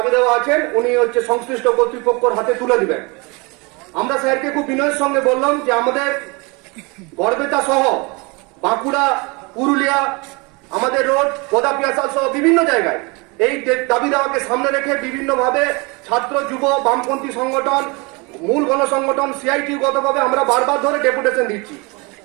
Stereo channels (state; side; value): quieter; left; 28.4 dB